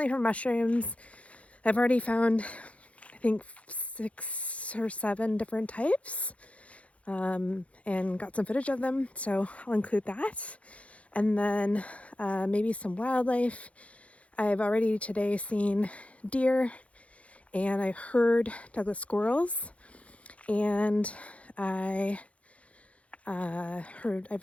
for mushrooms. I've already found, I think, 6 or 7 different types, and got some footage of them, so I'll include that. And then maybe some wildlife. I've already today seen deer, and I heard Douglas squirrels, and I've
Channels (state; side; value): late; right; 0.064 ms